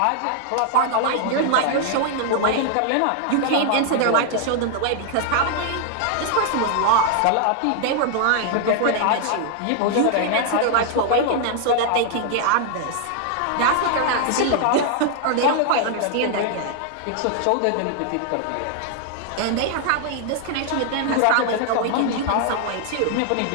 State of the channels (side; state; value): both; different; correlation 0.00